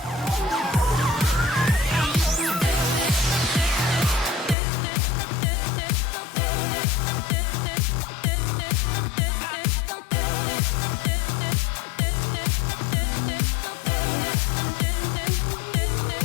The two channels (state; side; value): drops out; right; at 4.5 s